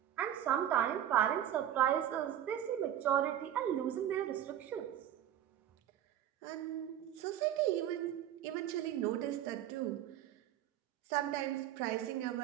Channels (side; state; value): left; quieter; 11.1 dB